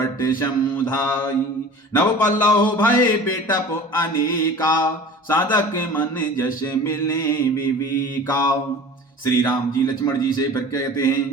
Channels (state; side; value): normal; both; correlation 0.40